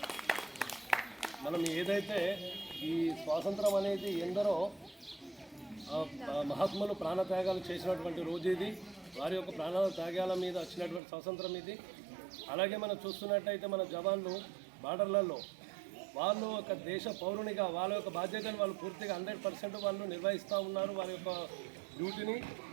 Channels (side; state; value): left; drops out; at 11.0 s